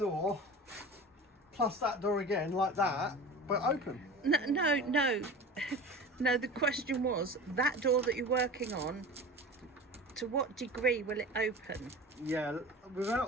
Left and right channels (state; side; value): normal; both; correlation 0.35